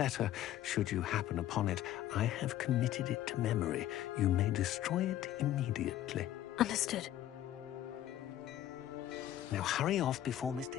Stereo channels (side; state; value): right; quieter; 12.6 dB